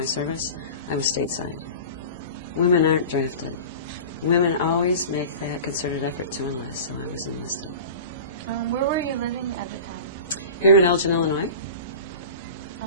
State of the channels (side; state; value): both; inverted; correlation -0.36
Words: service, I was stateside. Women aren't drafted. Women always make that concerted effort to enlist, so I was enlisted. Where were you living at the time? Here in Elgin, Illinois.